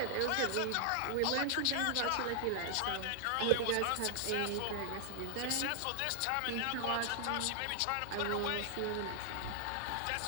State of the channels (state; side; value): different; both; correlation 0.00